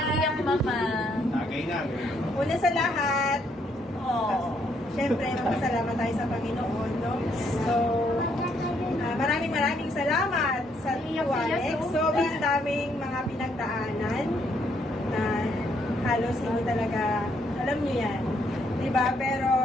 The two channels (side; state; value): both; normal; correlation 0.72